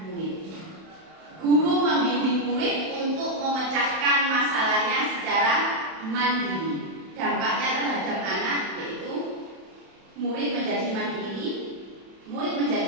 mandiri. Dampaknya terhadap anak yaitu murid menjadi mandiri, murid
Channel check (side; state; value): left; late; 31 ms